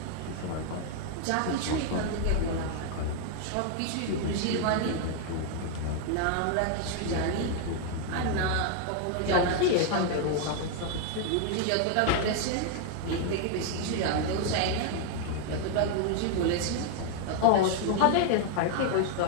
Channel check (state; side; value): different; both; correlation 0.00